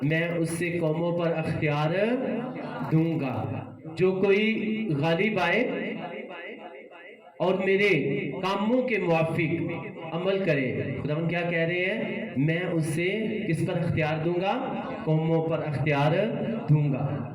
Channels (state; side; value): identical; both; correlation 1.00